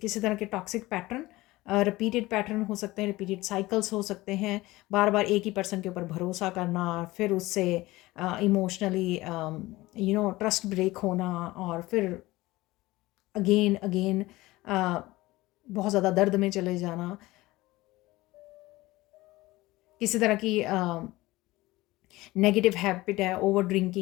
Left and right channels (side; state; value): right; quieter; 19.2 dB